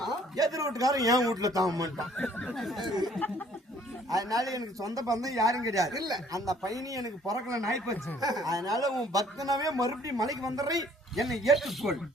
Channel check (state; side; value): normal; both; correlation 0.59